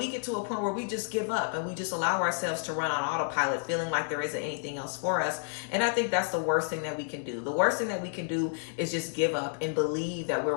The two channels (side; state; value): right; silent; 58 dB below the other